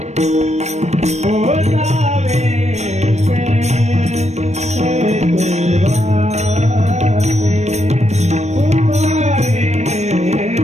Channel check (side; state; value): left; late; 0.32 ms